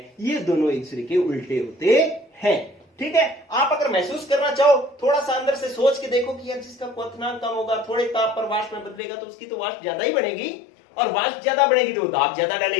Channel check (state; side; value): drops out; right; at 9.0 s